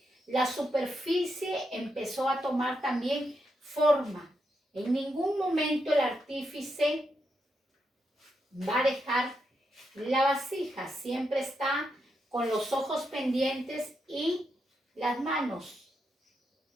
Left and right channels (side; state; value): both; normal; correlation 0.83